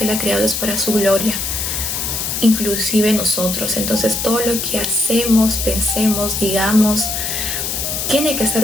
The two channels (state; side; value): noise; left; hiss, 2 dB below the sound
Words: Él ha creado es para su gloria, inclusive nosotros. Entonces todo lo que hacemos, pensemos, digamos, tiene que